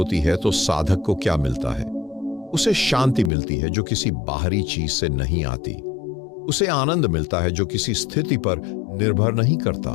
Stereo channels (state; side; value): drops out; right; at 3.3 s